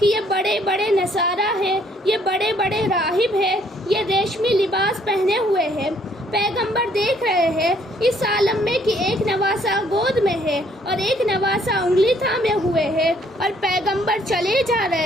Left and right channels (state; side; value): normal; both; correlation 0.65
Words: یہ بڑے بڑے نصارہ ہیں، یہ بڑے بڑے راہب ہیں، یہ ریشمی لباس پہنے ہوئے ہیں۔ پیغمبر دیکھ رہے ہیں اس عالم میں کہ ایک نواسا گود میں ہے اور ایک نواسا انگلی تھامے ہوئے ہے اور پیغمبر چلے جا